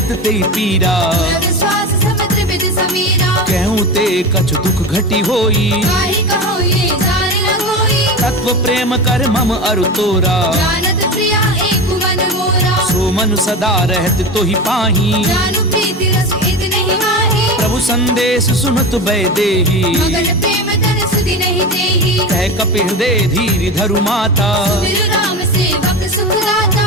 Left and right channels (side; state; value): both; normal; correlation 0.25